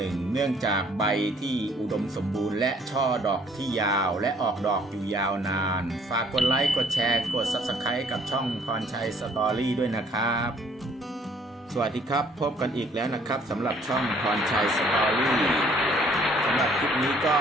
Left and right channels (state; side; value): normal; both; correlation 0.61